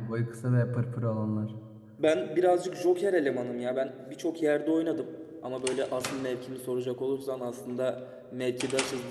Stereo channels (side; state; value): both; identical; correlation 1.00